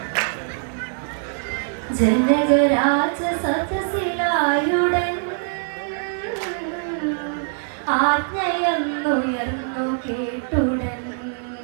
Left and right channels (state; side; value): silent; left; 60 dB below the other